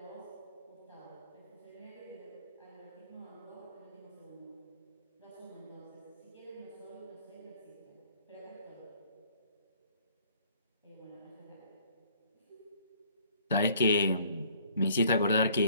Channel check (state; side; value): inverted; both; correlation -0.59